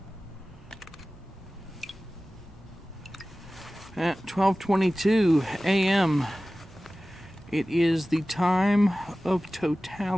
At 12:22 a.m. it is the time of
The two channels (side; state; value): both; normal; correlation 0.97